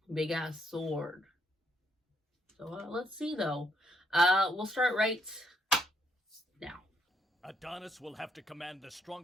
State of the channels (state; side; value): normal; both; correlation 0.72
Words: big ass sword. So let's see though. We'll start right now. Adonis will have to command the